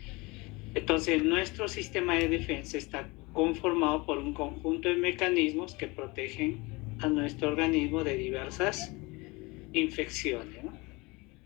Entonces, nuestro sistema de defensa está conformado por un conjunto de mecanismos que protegen a nuestro organismo de diversas infecciones, ¿no?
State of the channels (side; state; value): right; quieter; 25.0 dB